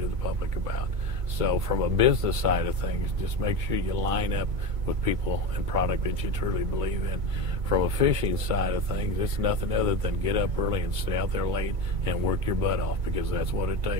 the public about. So from a business side of things, just make sure you line up with people and product that you truly believe in. From a fishing side of things, it's nothing other than get up early and stay out there late and work your butt off, because that's what it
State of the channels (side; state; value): left; late; 2.2 ms